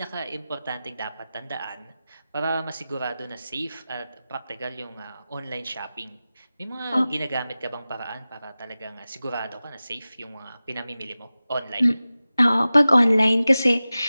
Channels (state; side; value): inverted; both; correlation -0.96